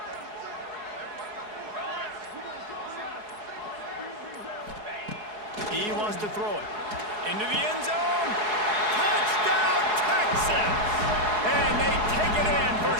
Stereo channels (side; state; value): left; late; 4.7 ms